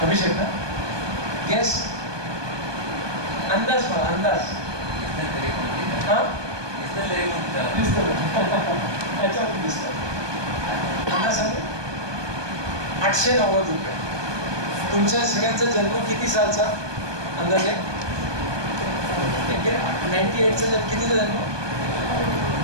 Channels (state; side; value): late; left; 1.2 ms